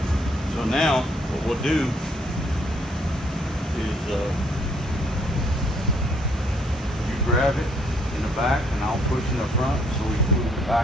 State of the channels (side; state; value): both; normal; correlation 0.67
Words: So now what we'll do is you grab it in the back and I'll push in the front so we can move it